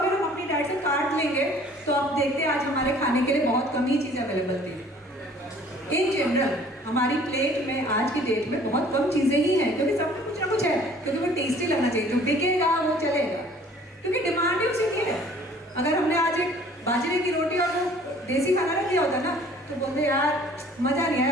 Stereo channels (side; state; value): both; normal; correlation 0.53